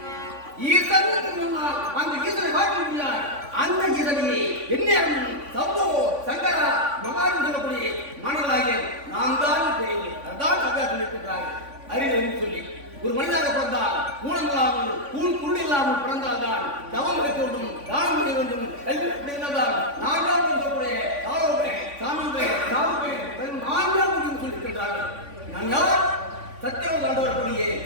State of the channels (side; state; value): left; late; 3.5 ms